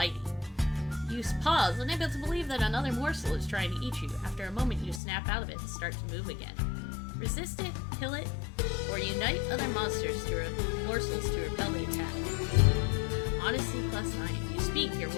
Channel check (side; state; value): right; drops out; at 5.0 s